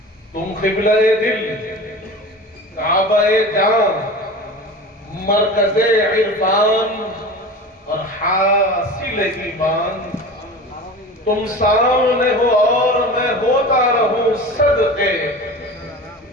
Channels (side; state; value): both; normal; correlation 0.34